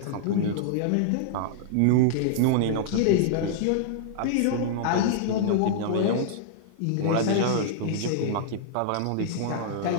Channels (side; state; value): both; different; correlation -0.01